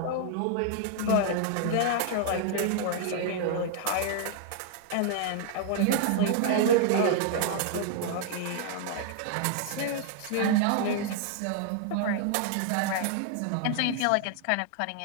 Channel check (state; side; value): different; both; correlation 0.00